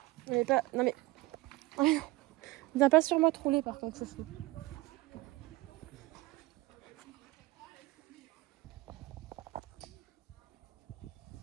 On est pas. Non mais. Viens pas sur moi te rouler par contre, chouchou.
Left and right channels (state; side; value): quieter; left; 20.1 dB